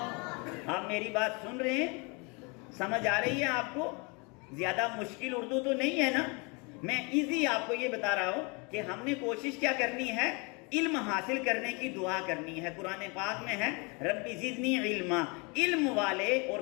آپ میری بات سن رہے ہیں، سمجھ آ رہی ہے آپ کو؟ زیادہ مشکل اردو تو نہیں ہے نا؟ میں ایزی آپ کو یہ بتا رہا ہوں کہ ہم نے کوشش کیا کرنی ہے، علم حاصل کرنے کی دعا کرنی ہے۔ قرآن پاک میں ہے ربی زدنی علما، علم والے اور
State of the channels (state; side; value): quieter; right; 30.7 dB